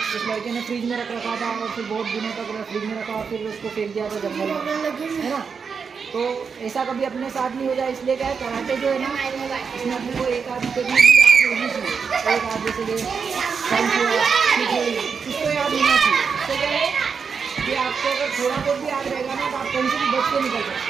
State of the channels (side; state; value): left; quieter; 5.9 dB